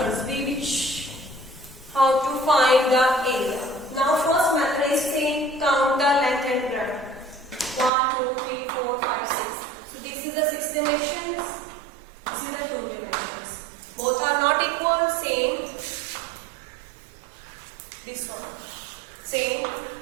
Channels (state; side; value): drops out; left; at 7.9 s